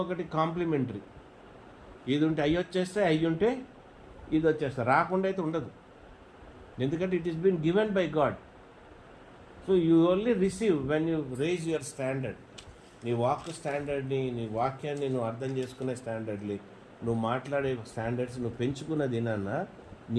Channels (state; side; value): identical; both; correlation 1.00